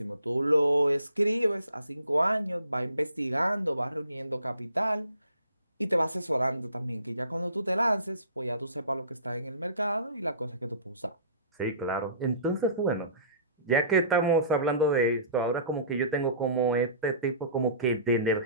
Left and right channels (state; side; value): inverted; both; correlation -0.48